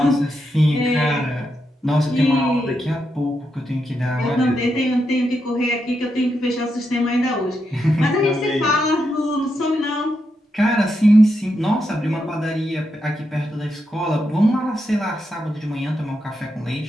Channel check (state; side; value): normal; both; correlation 0.84